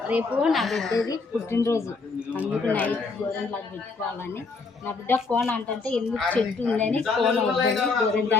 రేపు నా బిడ్డది పుట్టినరోజు, అందుకు నైట్ గోరెంట్లకు పెట్టుకోవాలని. నా బిడ్డ ఫోన్ అంటే ఎందుకు చెట్టు ఉందని ఫోన్ వద్దని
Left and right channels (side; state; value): right; quieter; 4.2 dB